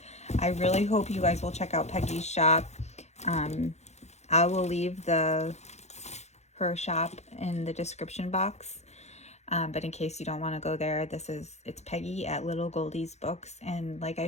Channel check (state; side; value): late; right; 0.32 ms